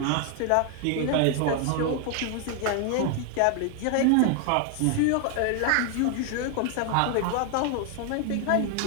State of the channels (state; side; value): different; both; correlation 0.00